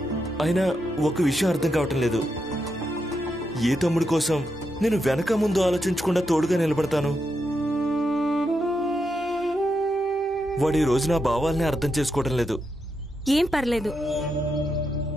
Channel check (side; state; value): both; normal; correlation 0.84